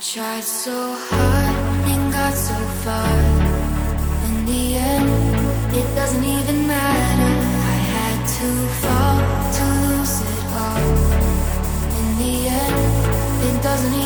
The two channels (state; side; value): identical; both; correlation 1.00